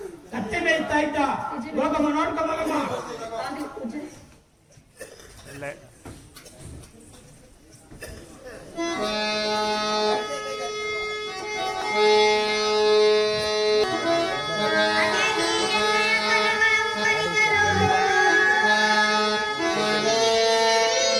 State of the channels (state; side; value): identical; both; correlation 1.00